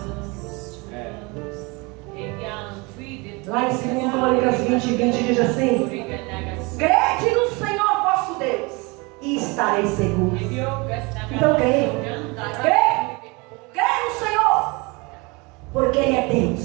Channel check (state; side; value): quieter; left; 27.1 dB